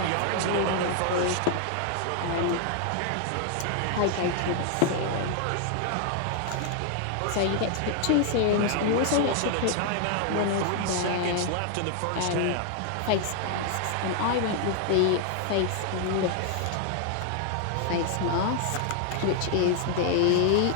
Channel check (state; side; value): different; both; correlation 0.00